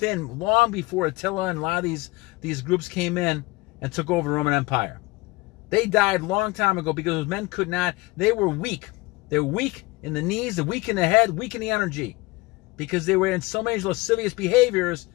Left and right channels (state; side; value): quieter; right; 22.5 dB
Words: long before Attila and a lot of these groups came in and took over the Roman Empire. They died a long time ago because those men could not, they were weak. They were weak in the knees, they're weak in the head, weak in the energy. Because they were in so many lascivious behaviors,